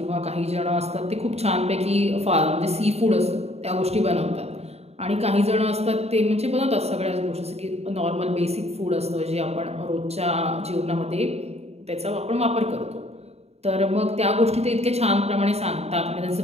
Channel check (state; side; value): late; left; 0.30 ms